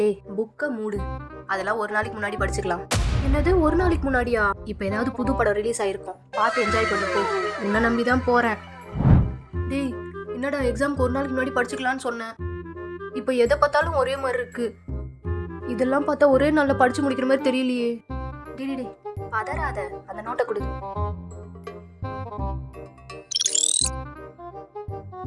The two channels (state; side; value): identical; both; correlation 1.00